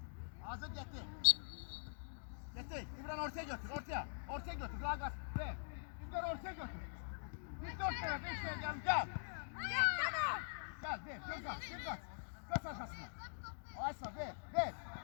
Hazır getdi. Getdi. İbrahim ortaya götür, ortaya. Ortaya götür, qulaq as. Ver. İbrahim ortaya götür. Bir 4 tane, 5 tane gel. Gel, ver, göz at. Kaç arkasına. Aysa ver.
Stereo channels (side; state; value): right; silent; digital silence